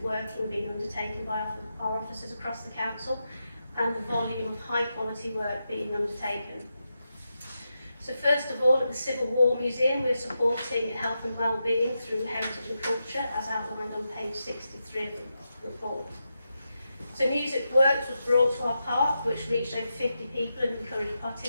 working being undertaken by our officers across the council and the volume of high-quality work being undertaken. So first of all, at the Civil War Museum, we're supporting health and wellbeing through heritage and culture, as outlined on page 63 of the report. So Music Works was brought to our park, which reached over 50 people and encouraged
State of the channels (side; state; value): both; inverted; correlation -0.87